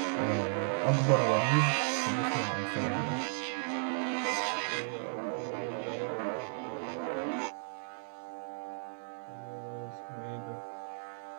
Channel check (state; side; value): silent; left; digital silence